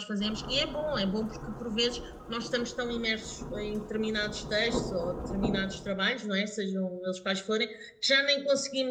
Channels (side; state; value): both; identical; correlation 1.00